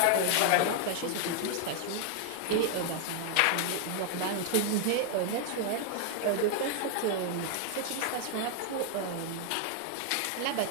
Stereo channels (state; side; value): different; both; correlation 0.00